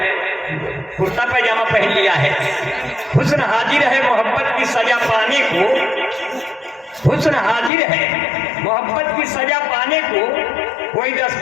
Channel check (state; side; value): drops out; right; at 7.7 s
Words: कुर्ता पैजामा पहन लिया है। हुस्न हाजिर है मोहब्बत की सजा पाने को, हुस्न हाजिर है मोहब्बत की सजा पाने को, कोई